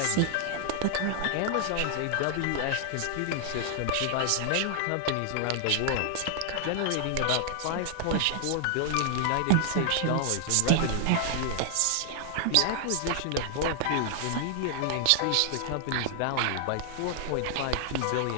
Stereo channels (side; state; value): both; different; correlation 0.00